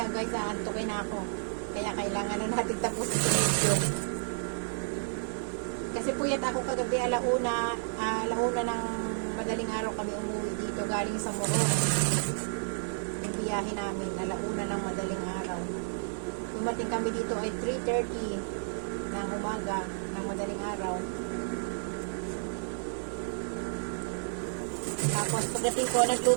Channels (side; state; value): left; silent; digital silence